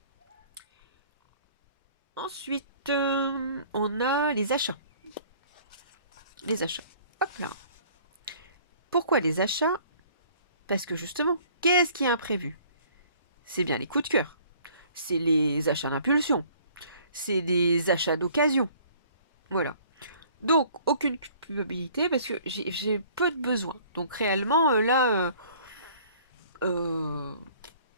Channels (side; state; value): both; inverted; correlation -0.55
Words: Ensuite, on a les achats. Les achats. Hop là. Pourquoi les achats? Parce que justement, qu'est-ce qui est imprévu? C'est bien les coups de cœur. C'est les achats d'impulsion. C'est des achats d'occasion. Voilà. Donc, aucune culpabilité parce que j'ai peu de besoins. Donc, réellement, là, euh,